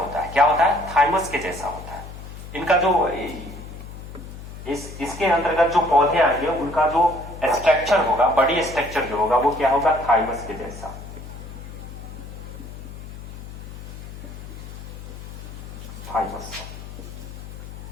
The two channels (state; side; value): noise; left; hum, 12 dB below the sound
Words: है। क्या होता है? थाइमस के जैसा होता है। इनका जो इसके अंतर्गत जो पौधे आएंगे उनका जो स्ट्रक्चर होगा, बॉडी स्ट्रक्चर जो होगा वो क्या होगा? थाइमस के जैसा।